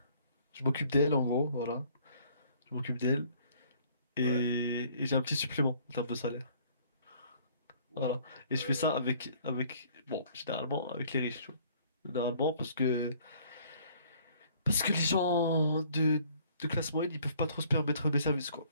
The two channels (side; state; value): both; inverted; correlation -0.59